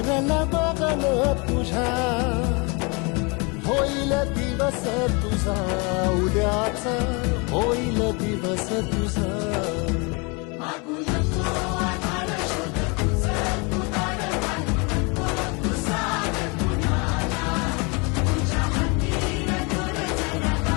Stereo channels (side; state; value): right; quieter; 30.4 dB